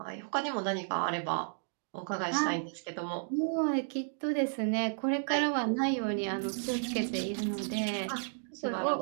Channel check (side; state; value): left; silent; digital silence